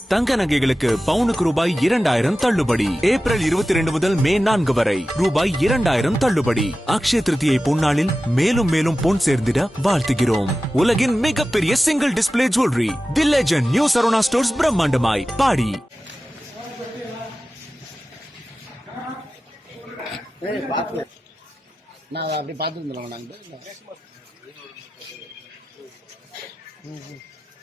தங்க நகைகளுக்கு பவுனுக்கு ரூபாய் 2000 தள்ளுபடி. ஏப்ரல் 22 முதல் மே 4 வரை ரூபாய் 2000 தள்ளுபடி. அக்ஷய திருதியை பொன்னாளில் மேலும் மேலும் பொன் சேர்ந்திட வாழ்த்துகிறோம். உலகின் மிகப்பெரிய single display jewellery the legend new Saravana stores பிரம்மாண்டமாய் பாடி. நான் அப்படி பார்த்துருந்தோம் நாங்கள்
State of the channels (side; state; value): both; normal; correlation 0.95